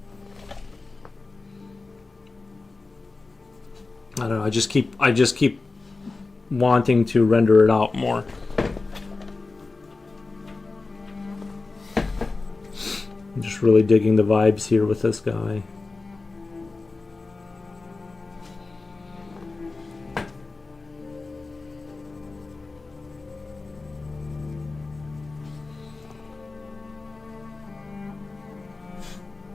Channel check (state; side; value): quieter; right; 3.7 dB